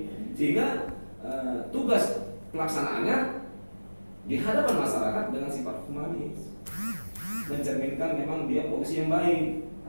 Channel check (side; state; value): both; inverted; correlation -1.00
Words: sehingga tugas pelaksanaannya di hadapan masyarakat dengan sifat humanis, mencerminkan memang dia polisi yang baik,